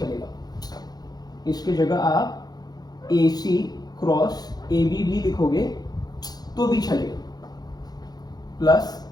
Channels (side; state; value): right; late; 0.19 ms